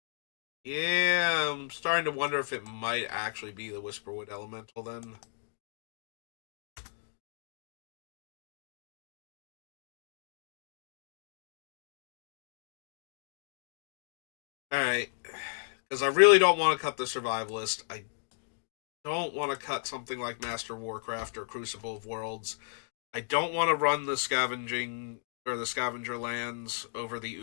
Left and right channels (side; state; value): right; silent; digital silence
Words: Yeah, I'm starting to wonder if it might actually be the Whisperwood Elemental then. Alright. Because I really don't want to cut the Survivalist. I don't want to cut something like Master Warcraft or Crucible of Worlds. I don't want to run the scavenging or the scavenger lands over the